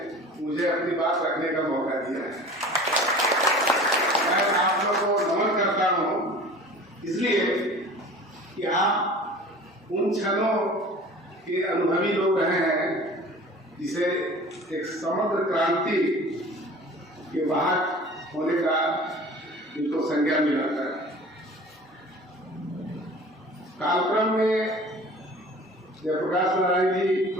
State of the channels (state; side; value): normal; both; correlation 0.42